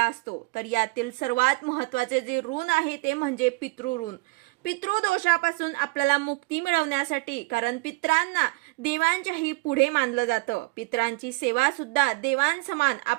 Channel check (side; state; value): left; quieter; 26.4 dB